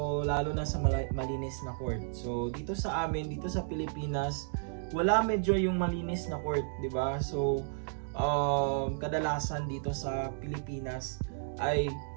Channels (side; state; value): left; silent; digital silence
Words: lalo na sa malinis na court. So dito sa amin, dito sa Pilipinas, wala medyo yung malinis na court, 'di ba? So kadalasan dito sa Pilipinas ay